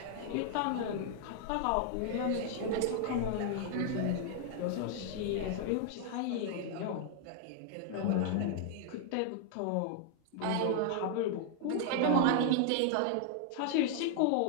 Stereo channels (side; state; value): both; different; correlation 0.00